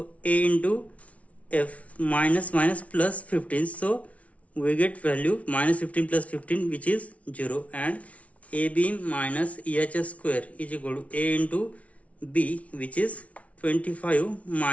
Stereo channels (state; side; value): late; right; 0.066 ms